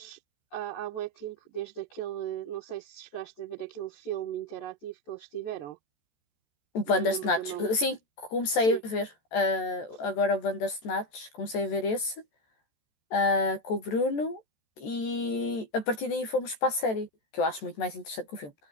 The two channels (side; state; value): right; late; 14 ms